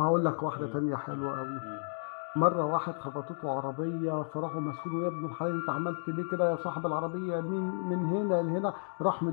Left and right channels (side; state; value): right; silent; digital silence